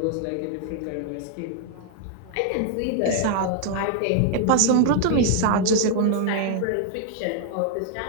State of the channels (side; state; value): both; different; correlation 0.00